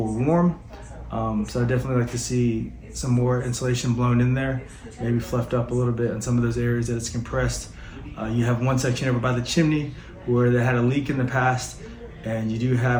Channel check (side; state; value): both; identical; correlation 1.00